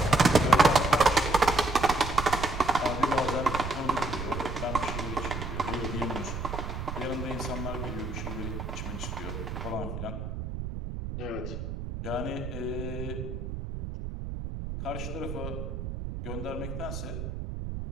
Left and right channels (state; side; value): noise; right; rumble, 6 dB below the sound